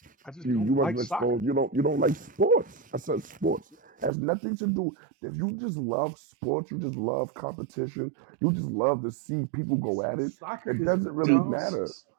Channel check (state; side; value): drops out; left; at 4.1 s